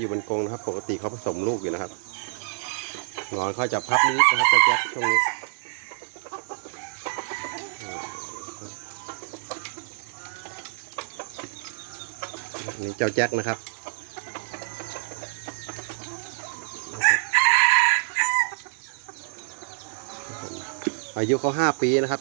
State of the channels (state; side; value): silent; left; digital silence